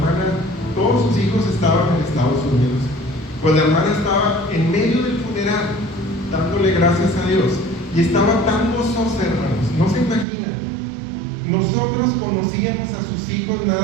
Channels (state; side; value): drops out; left; at 10.2 s